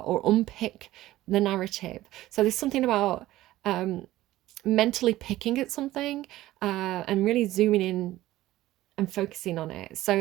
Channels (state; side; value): quieter; left; 15.8 dB